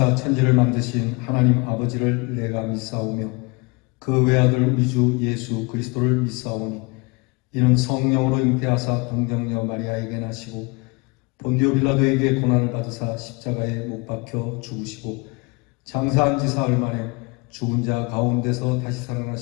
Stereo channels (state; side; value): quieter; right; 28.2 dB